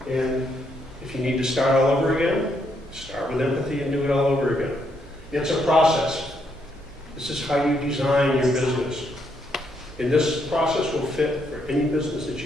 And if you need to start all over again, start with empathy and do it all over again. It's a process. This is how you design your business. And this process will fit for any business that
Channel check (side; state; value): both; normal; correlation 0.75